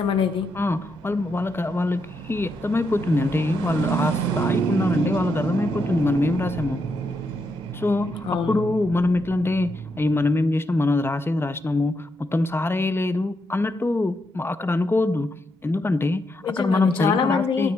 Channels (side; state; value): both; normal; correlation 0.81